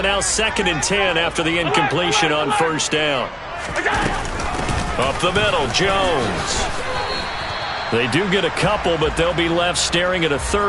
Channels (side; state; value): both; identical; correlation 1.00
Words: now 2nd and 10 after the incompletion on 1st down. Up the middle, Jones. They do get a couple, but they'll be left staring at a